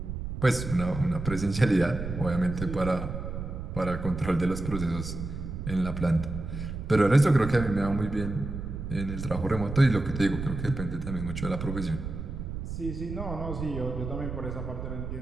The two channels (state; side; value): noise; right; rumble, 6 dB below the sound